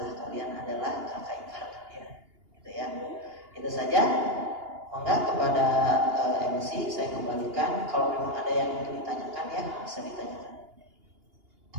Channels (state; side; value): late; left; 2.8 ms